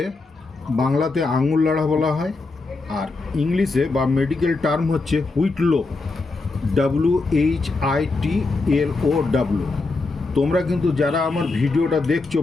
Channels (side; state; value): right; quieter; 3.6 dB